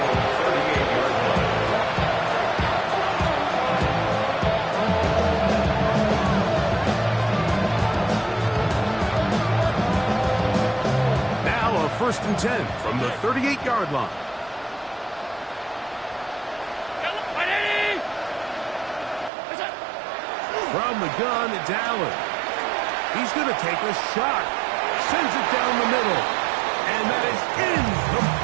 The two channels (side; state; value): left; drops out; at 19.3 s